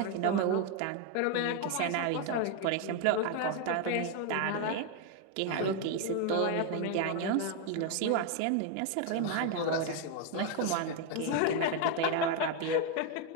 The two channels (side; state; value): both; different; correlation 0.01